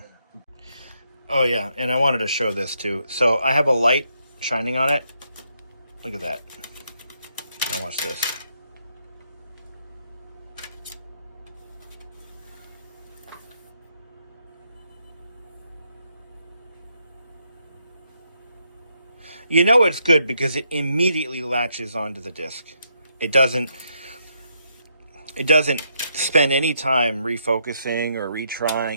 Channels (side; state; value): both; inverted; correlation -0.77